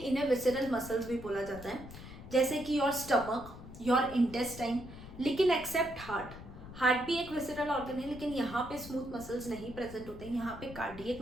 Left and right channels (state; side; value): noise; left; rumble, 14 dB below the sound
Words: विसरल मसल्स भी बोला जाता है. जैसे कि योर स्टमक, योर इंटेस्टाइन, लेकिन एक्सेप्ट हार्ट. हार्ट भी एक विसरल ऑर्गन है लेकिन यहाँ पे स्मूथ मसल्स नहीं प्रेजेंट होते हैं. यहाँ पे कार्डियक